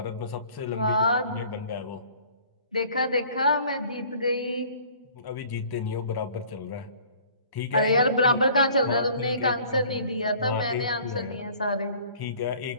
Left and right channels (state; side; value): inverted; both; correlation -0.52